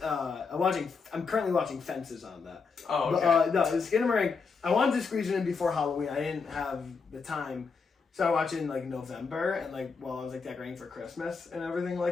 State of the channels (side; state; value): right; quieter; 5.1 dB